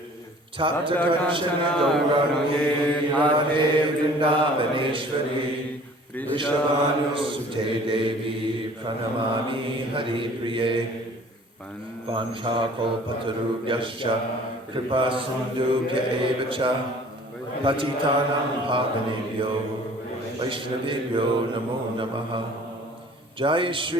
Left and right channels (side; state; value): both; normal; correlation 0.50